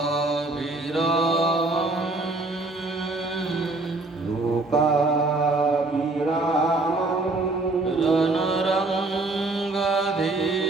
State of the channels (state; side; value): quieter; left; 3.1 dB